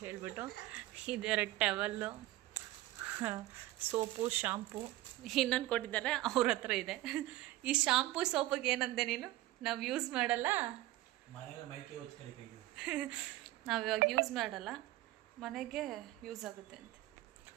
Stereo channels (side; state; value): left; quieter; 16.8 dB